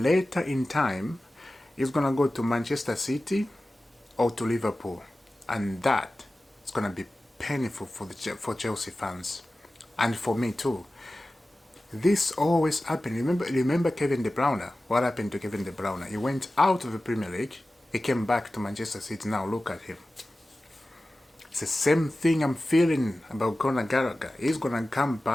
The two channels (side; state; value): both; normal; correlation 0.95